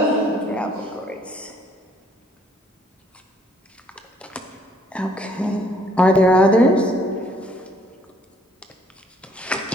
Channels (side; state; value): both; normal; correlation 0.63